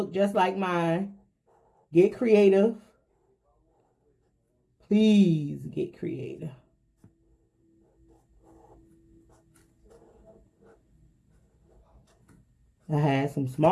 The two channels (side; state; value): both; identical; correlation 1.00